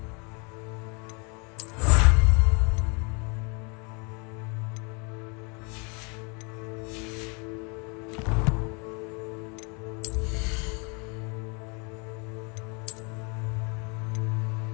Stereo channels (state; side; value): quieter; right; 32.8 dB